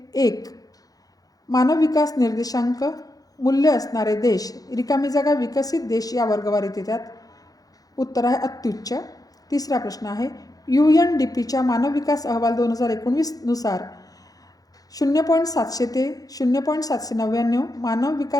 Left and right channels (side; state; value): right; late; 0.18 ms